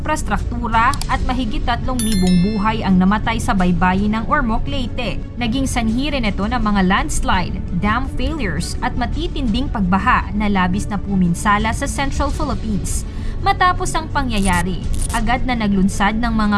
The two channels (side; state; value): both; identical; correlation 1.00